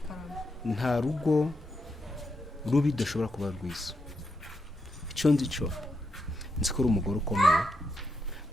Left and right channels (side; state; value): both; normal; correlation 0.83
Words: nta rugo rubi dashobora kuba rwiza icyo nzi cyo nzi ko uri umugore ukomeye